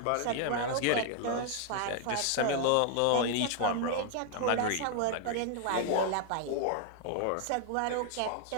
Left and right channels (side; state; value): both; different; correlation 0.00